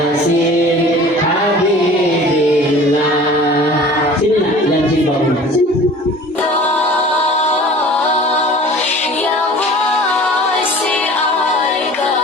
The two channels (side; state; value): both; normal; correlation 0.44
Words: Habibillah. Sini nak, yang jilbab sini.